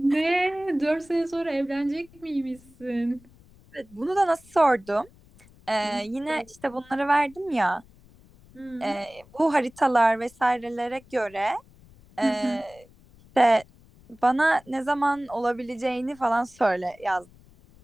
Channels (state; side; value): noise; left; rumble, 26 dB below the sound